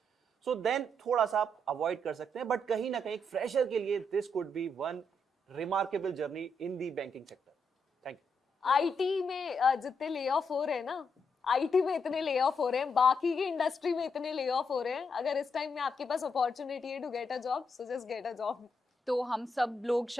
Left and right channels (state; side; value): normal; both; correlation 0.79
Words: so then थोड़ा सा आप अवॉइड कर सकते हैं। बट कहीं ना कहीं फ्रेशर के लिए this could be one remarkable journey in the banking sector. Thank you. IT में जितने ले ऑफ हो रहे हैं ना, आईटी में इतने ले ऑफ हो रहे हैं, बाकी की इंडस्ट्री में इतने ले ऑफ हो रहे हैं, अगर इस टाइम में आपके पास अपॉर्चुनिटी है to get a job, so just get a job. तो हम सब लोग